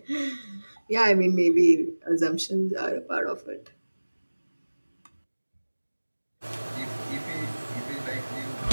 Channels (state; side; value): inverted; both; correlation -1.00